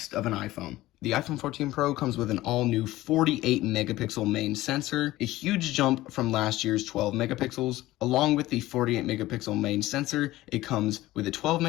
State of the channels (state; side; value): quieter; right; 16.9 dB